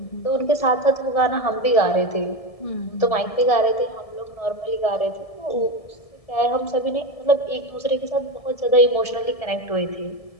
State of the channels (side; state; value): right; late; 1.7 ms